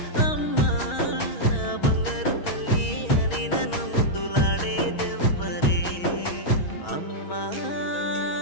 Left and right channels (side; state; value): right; late; 6.2 ms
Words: అమ్మా, నా బంగారు తల్లి అని నన్ను ముద్దులాడేదెవ్వరే. అమ్మా